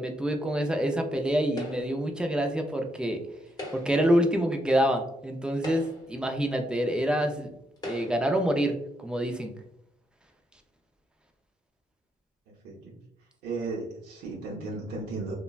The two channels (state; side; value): normal; both; correlation 0.79